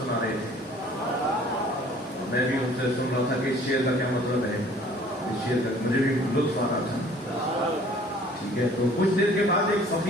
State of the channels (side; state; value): both; normal; correlation 0.53